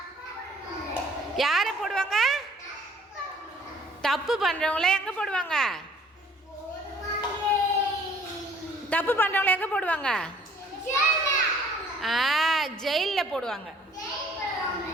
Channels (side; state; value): both; normal; correlation 0.57